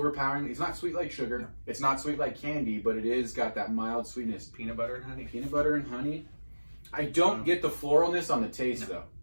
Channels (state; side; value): inverted; both; correlation -1.00